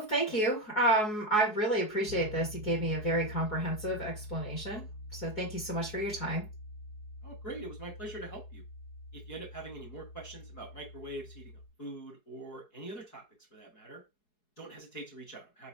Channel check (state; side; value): late; right; 4.7 ms